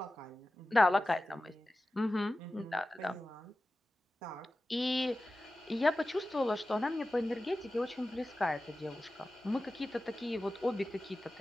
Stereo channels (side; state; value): both; normal; correlation 0.95